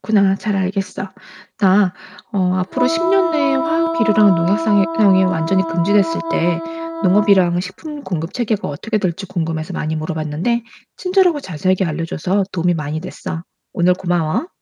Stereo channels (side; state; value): both; identical; correlation 1.00